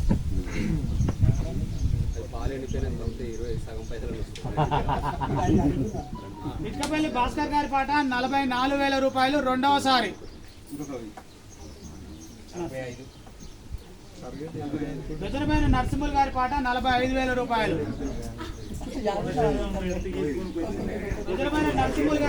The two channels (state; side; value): identical; both; correlation 1.00